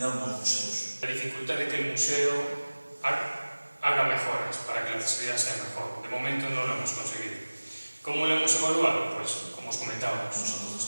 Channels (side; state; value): both; inverted; correlation -1.00